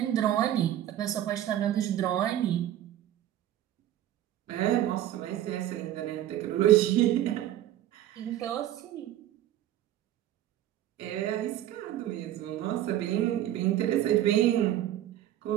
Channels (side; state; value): left; quieter; 12.5 dB